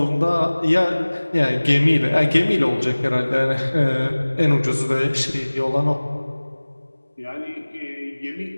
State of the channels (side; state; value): both; inverted; correlation -1.00